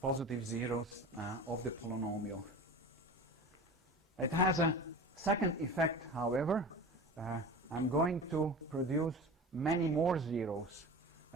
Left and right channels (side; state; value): both; normal; correlation 0.34